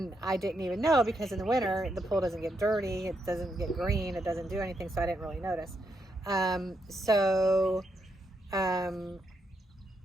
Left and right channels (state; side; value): normal; both; correlation 0.80